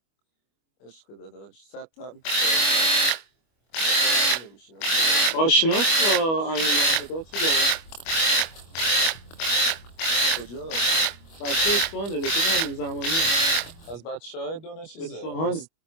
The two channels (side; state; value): right; late; 25 ms